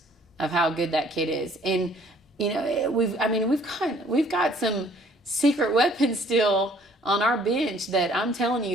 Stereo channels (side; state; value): both; normal; correlation 0.58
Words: of how good that kid is. And, we've got some secret weapons still on our bench that I'm telling